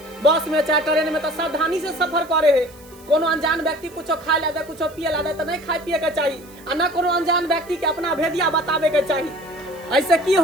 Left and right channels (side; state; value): right; noise; hiss, 24 dB below the sound